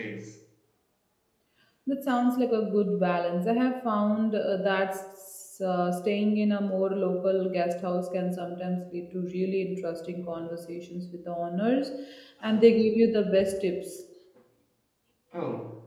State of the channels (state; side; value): identical; both; correlation 1.00